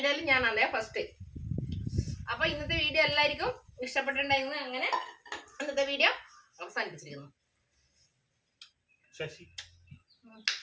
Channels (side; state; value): both; identical; correlation 1.00